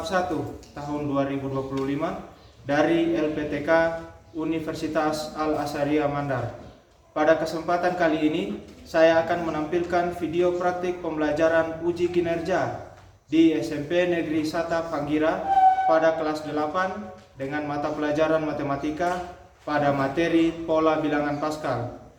1 tahun 2025 dari LPTK Universitas Al-Azhariyah Mandar. Pada kesempatan kali ini, saya akan menampilkan video praktik pembelajaran uji kinerja di SMP Negeri Sata Panggira pada kelas 8 dengan mata pelajaran matematika pada materi pola bilangan Pascal.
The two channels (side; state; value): both; identical; correlation 1.00